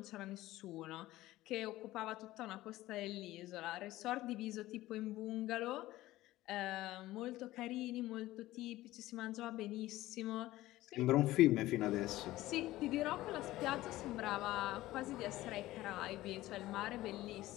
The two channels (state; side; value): quieter; right; 16.6 dB